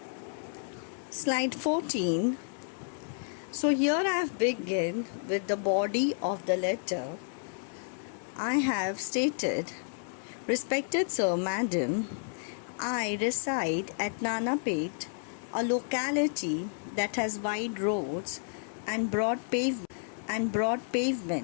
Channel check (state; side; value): silent; right; 57 dB below the other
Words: Slide 14. So here I have begun with the body of the letter. I have stated, respected Sir, Madam, I reside at Nanapet, a locality that has wide roads and broad